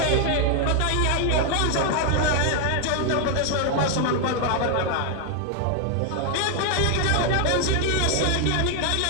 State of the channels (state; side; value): different; both; correlation 0.01